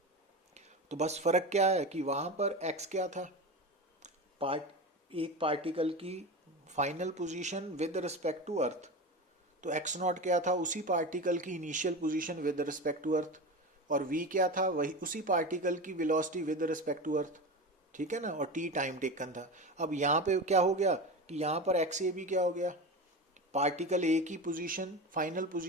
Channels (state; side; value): normal; both; correlation 0.25